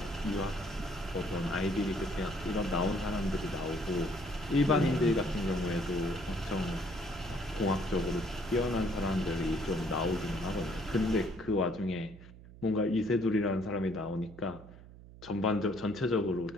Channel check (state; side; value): noise; right; hum, 18 dB below the sound